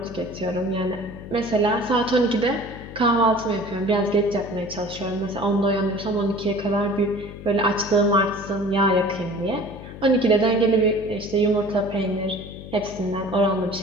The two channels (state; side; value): noise; left; hum, 13 dB below the sound